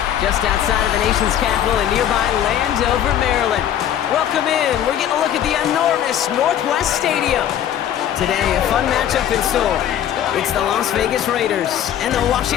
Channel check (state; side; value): quieter; right; 10.5 dB